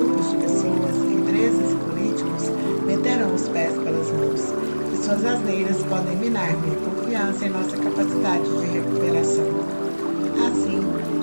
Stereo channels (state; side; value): inverted; both; correlation -1.00